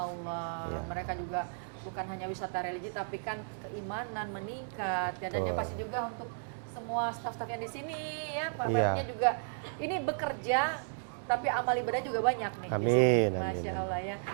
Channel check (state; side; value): silent; left; digital silence